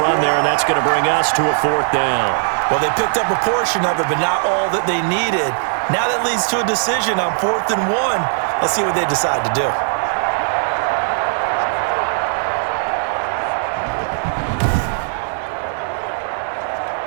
run there, and that's going to bring us to a 4th down. Well, they picked up a portion of it, but not all that they needed. Now that leads to a decision on 4th and 1. Let's see what they decide to do.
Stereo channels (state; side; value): silent; left; digital silence